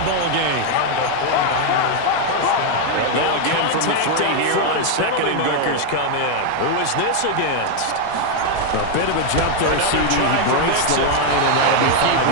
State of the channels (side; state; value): both; different; correlation 0.00